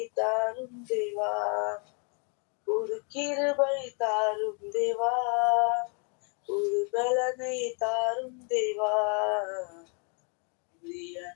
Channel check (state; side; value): quieter; right; 38.5 dB